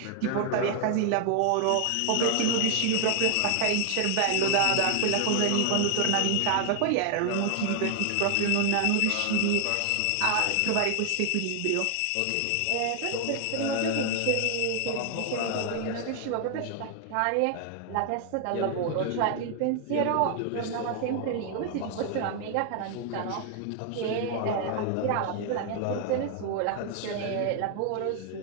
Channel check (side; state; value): both; different; correlation 0.00